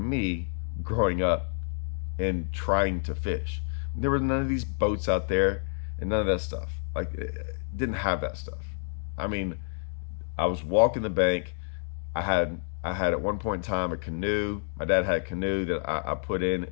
growing up and trying to fish. There were none of these boats out there and none of that stuff. Like, didn't have that stuff. I mean, I was walking the bank. I had at one point in time a canoe. My dad had a canoe that I put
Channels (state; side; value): silent; right; 59 dB below the other